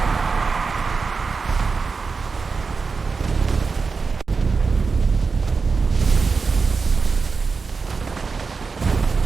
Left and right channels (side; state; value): left; quieter; 4.7 dB